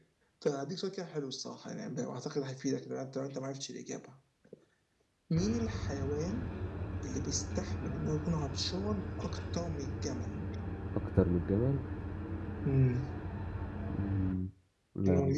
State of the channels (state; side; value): identical; both; correlation 1.00